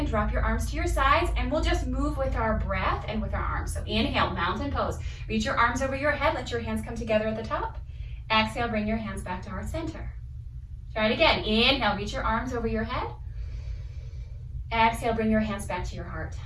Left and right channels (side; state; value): both; identical; correlation 1.00